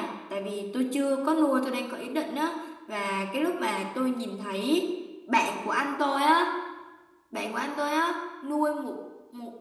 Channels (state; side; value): identical; both; correlation 1.00